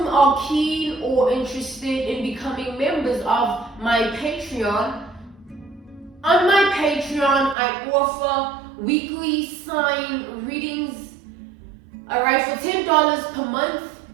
are keen or interested in becoming members of my Patreon, on my Patreon, I offer weekly sign readings, alright, for $10 per month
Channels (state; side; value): drops out; left; at 7.6 s